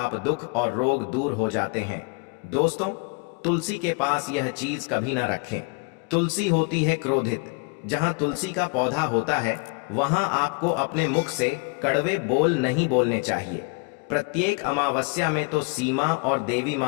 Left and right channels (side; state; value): right; quieter; 32.2 dB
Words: दुख और रोग दूर हो जाते हैं। दोस्तों, तुलसी के पास यह चीज कभी ना रखें। तुलसी होती है क्रोधित। जहां तुलसी का पौधा होता है वहां आपको अपने मुख से कड़वे बोल नहीं बोलने चाहिए। प्रत्येक अमावस्या में तो सीमा और देवी